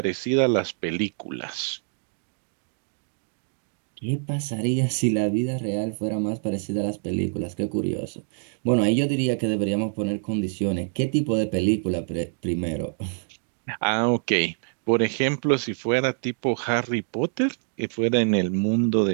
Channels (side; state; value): left; silent; digital silence